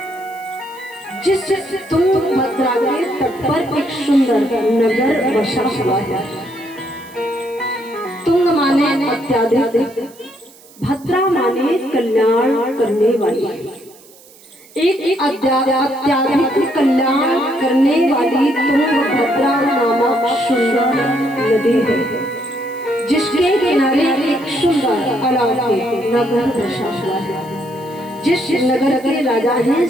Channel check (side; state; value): right; noise; hiss, 25 dB below the sound